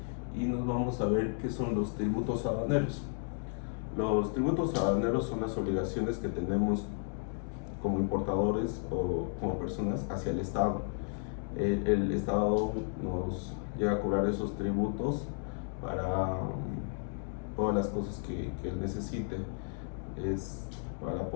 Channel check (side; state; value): right; silent; 56 dB below the other